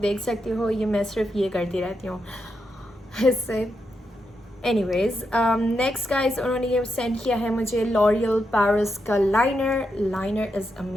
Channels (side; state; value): both; normal; correlation 0.84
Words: देख सकते हो ये मैं सिर्फ ये करती रहती हूँ इससे. एनीवेज, नेक्स्ट गाइज, उन्होंने ये सेंड किया है मुझे लॉरियल पेरिस का liner. Liner is